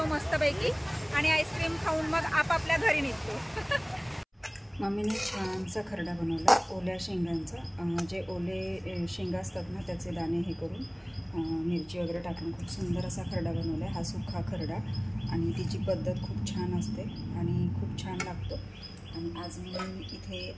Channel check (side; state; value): both; identical; correlation 1.00